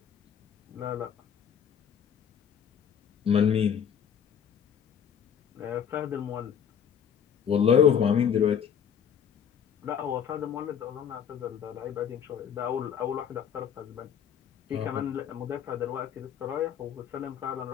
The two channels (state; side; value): quieter; right; 8.2 dB